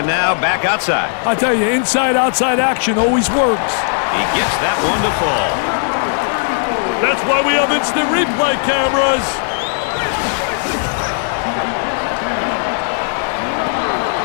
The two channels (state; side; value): silent; right; 69 dB below the other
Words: now back outside. I tell you, inside-outside action always works. He gets that one to fall. That's why we have instant replay cameras.